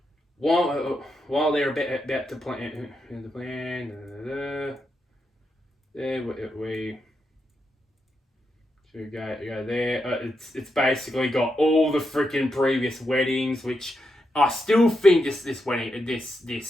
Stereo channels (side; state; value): both; normal; correlation 0.84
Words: they're about to plan the plan, we should go there. It's basically got all the freaking previous weddings, which I still think this